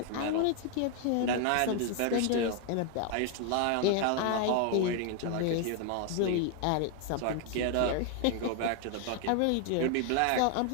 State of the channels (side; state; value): both; different; correlation 0.00